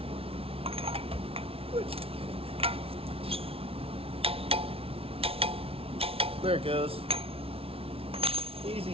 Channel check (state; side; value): late; left; 0.27 ms